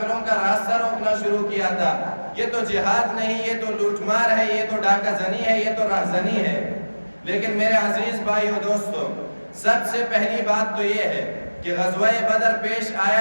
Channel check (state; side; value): inverted; both; correlation -1.00